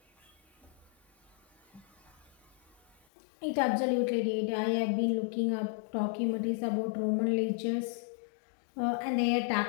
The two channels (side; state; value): right; drops out; at 3.0 s